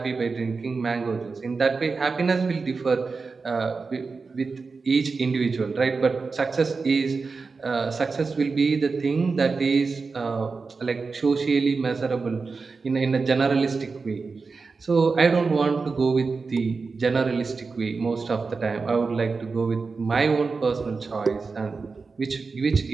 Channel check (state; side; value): quieter; left; 4.4 dB